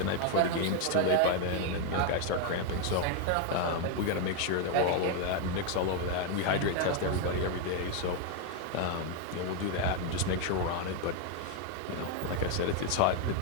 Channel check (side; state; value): both; different; correlation 0.01